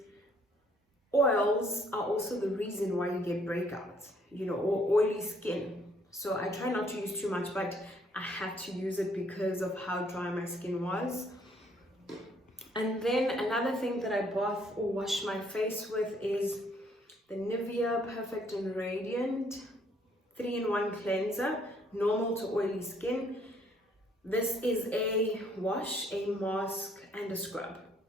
oils are also the reason why you get breakouts, you know, or oily skin. So I try not to use too much, but I had to use it because of how dry my skin was. And then another thing that I bath or wash my face with is the Nivea Perfect and Radiant 3-in-1 cleanser, normal to oily skin. This is a wash, a mask, and a scrub.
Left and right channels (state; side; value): normal; both; correlation 0.65